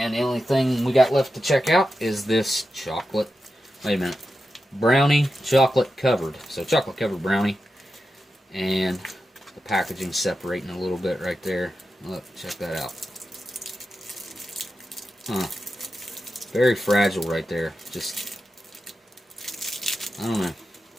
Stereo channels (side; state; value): both; normal; correlation 0.90